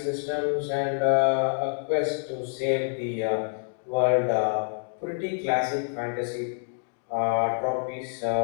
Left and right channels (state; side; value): silent; right; digital silence